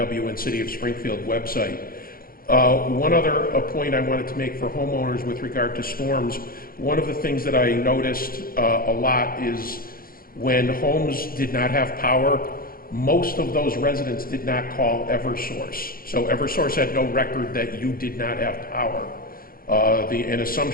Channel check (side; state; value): right; late; 0.42 ms